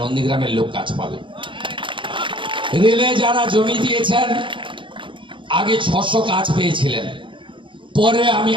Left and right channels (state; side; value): late; left; 0.24 ms